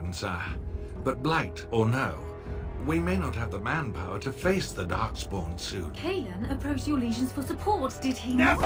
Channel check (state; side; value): identical; both; correlation 1.00